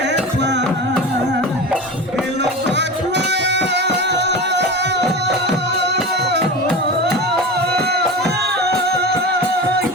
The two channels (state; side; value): normal; both; correlation 0.28